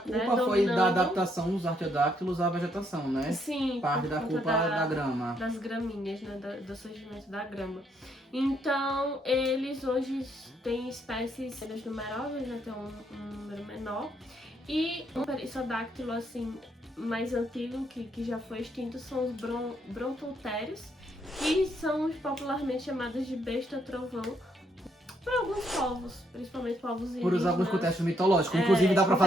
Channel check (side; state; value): both; normal; correlation 0.73